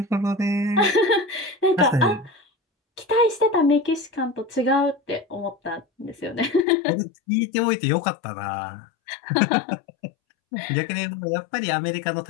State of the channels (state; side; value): drops out; right; at 6.7 s